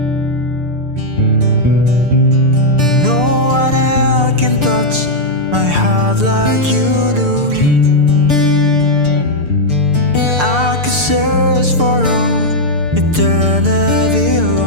No one else can touch my heart like you do. I could search for all eternity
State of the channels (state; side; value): late; left; 6.7 ms